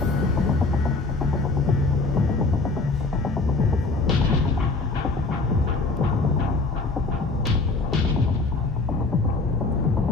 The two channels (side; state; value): right; quieter; 3.6 dB